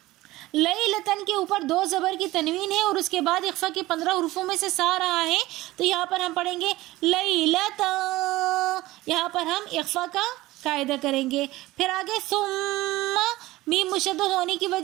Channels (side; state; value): left; quieter; 18.1 dB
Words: لیلتن کے اوپر 2 زبر کی تنوین ہے اور اس کے بعد اخفا کے 15 حروفوں میں سے سا رہا ہے تو یہاں پر ہم پڑھیں گے لیلتا. یہاں پر ہم اخفا کا قاعدہ کریں گے. پھر آگے ثم میم مشدد ہونے کی